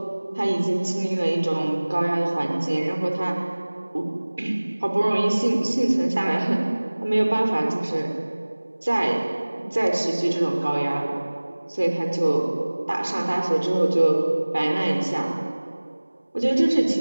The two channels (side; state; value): both; inverted; correlation -1.00